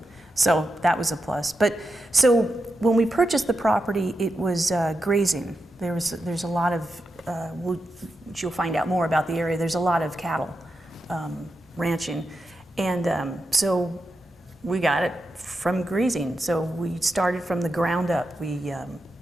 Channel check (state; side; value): normal; both; correlation 0.88